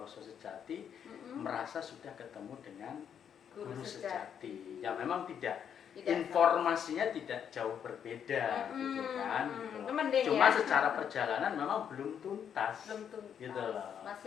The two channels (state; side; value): quieter; right; 8.3 dB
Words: sejati, merasa sudah ketemu dengan guru sejati. Ya memang tidak informasinya tidak jauh berbeda, gitu kan. Gitu. Cuma secara perjalanan memang belum tuntas. Gitu loh.